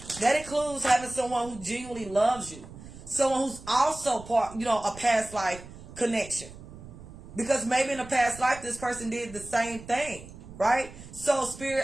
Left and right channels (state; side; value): noise; right; rumble, 16 dB below the sound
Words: That includes having someone who genuinely loves you. Someone who's also part, you know, a past life connection. Because maybe in a past life, this person did the same thing. Right? So